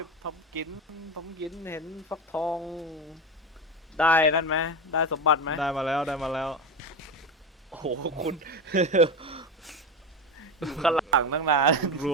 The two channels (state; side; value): normal; both; correlation 0.20